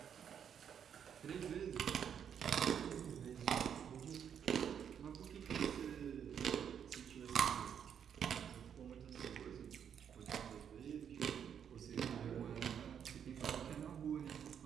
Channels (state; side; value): quieter; left; 8.2 dB